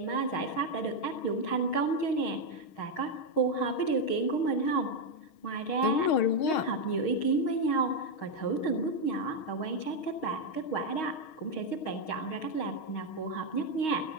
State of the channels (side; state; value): right; late; 6.4 ms